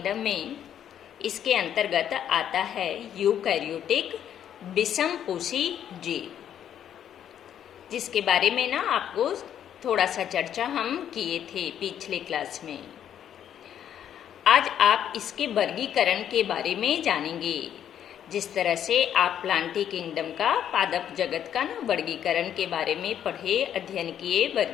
में इसके अंतर्गत आता है यूकैरियोटिक विषमपोषी जीव, जिसके बारे में ना आपको थोड़ा सा चर्चा हम किए थे पिछले क्लास में। आज आप इसके वर्गीकरण के बारे में जानेंगे। जिस तरह से आप प्लांटी किंगडम का, पादप जगत का ना वर्गीकरण के बारे में पढ़े, अध्ययन किए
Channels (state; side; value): quieter; right; 9.8 dB